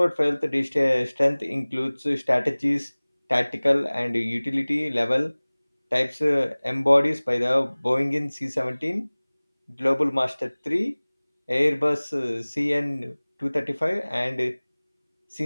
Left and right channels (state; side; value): inverted; both; correlation -1.00